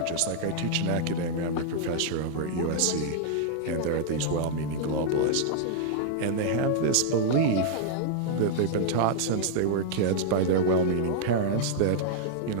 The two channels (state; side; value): different; both; correlation -0.01